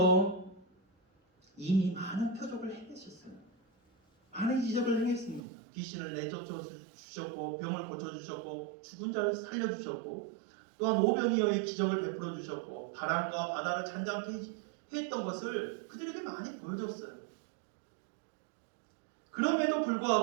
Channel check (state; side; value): drops out; left; at 5.5 s